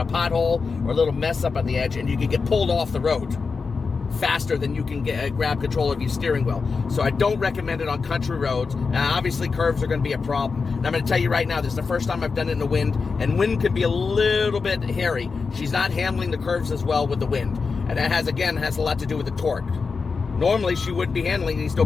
pothole or a little mess up on the edge, and you can get pulled off the road faster than you can grab control of your steering wheel. So I don't recommend it on country roads. Now, obviously, curves are going to be a problem. And I'm going to tell you right now, this is the first time I've done it in the wind, and wind could be a little bit hairy. She's not handling the curves as well with the wind. And that has a lot to do with the torque. Normally, she would be handling these no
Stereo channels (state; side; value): quieter; right; 4.8 dB